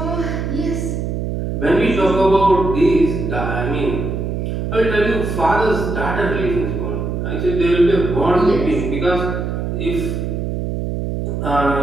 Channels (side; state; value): right; noise; hum, 3 dB below the sound